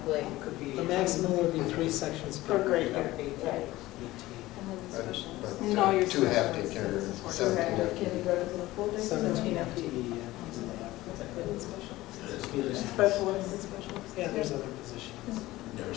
Could be, the maximum would be 3 sections per Per grade grade. level. Right. And then the specials. No, you're 2 half special day care, education. 17 FTE. Kindergarten to the full day. 17 FTE, yeah. Specialists. Yeah, there's other positions.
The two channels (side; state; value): right; quieter; 17.6 dB